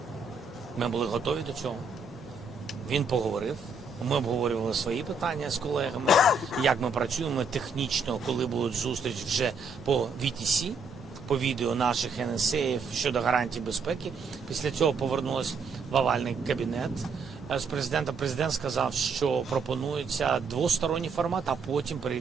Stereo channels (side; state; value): left; quieter; 3.9 dB